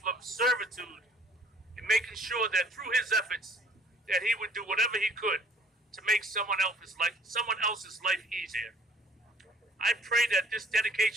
of servitude in making sure that through his efforts, that he would do whatever he could to make someone else's life easier. I pray that this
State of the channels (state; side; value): normal; both; correlation 0.58